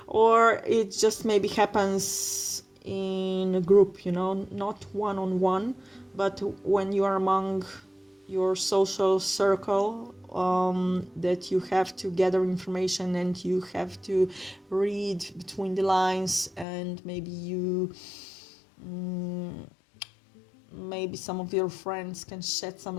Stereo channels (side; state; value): right; drops out; at 16.7 s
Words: Or it just maybe happens in a group, not one-on-one, but when you are among your social circle, that you have to gather information and you have to read between the lines, and maybe some of your friends can shed some